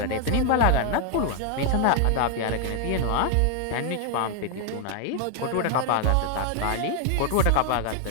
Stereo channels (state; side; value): different; both; correlation 0.00